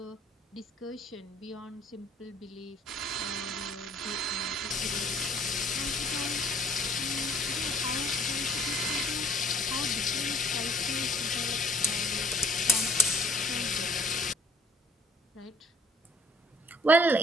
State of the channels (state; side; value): normal; both; correlation 0.58